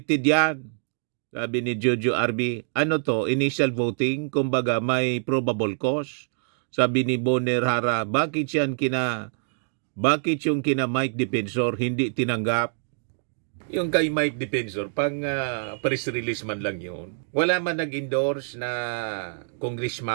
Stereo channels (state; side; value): silent; left; digital silence